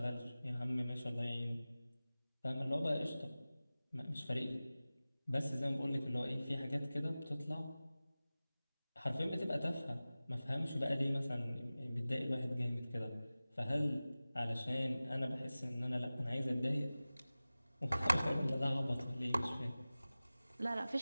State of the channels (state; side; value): inverted; both; correlation -0.97